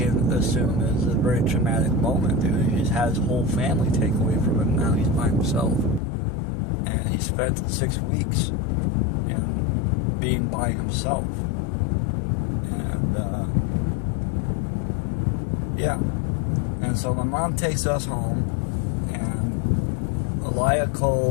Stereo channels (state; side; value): drops out; right; at 6.0 s